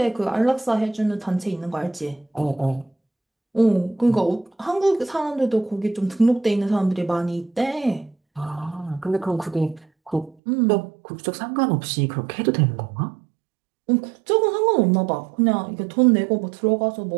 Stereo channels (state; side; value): drops out; left; at 10.4 s